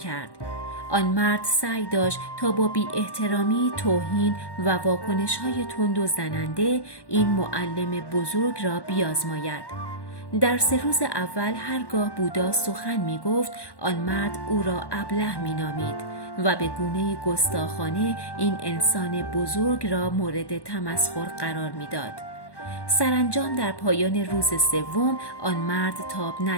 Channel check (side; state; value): right; late; 1.1 ms